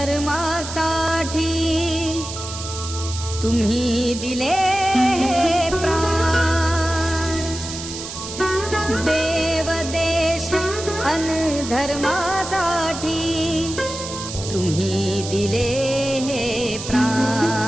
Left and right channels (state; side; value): noise; right; hiss, 9 dB below the sound